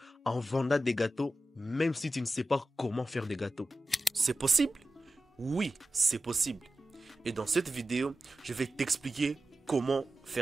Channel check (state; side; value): normal; both; correlation 0.93